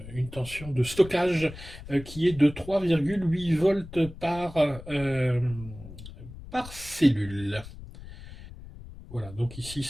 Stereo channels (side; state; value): left; noise; rumble, 15 dB below the sound